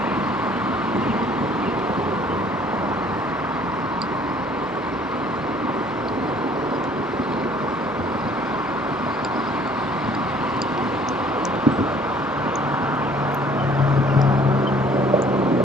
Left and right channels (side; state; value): both; normal; correlation 0.57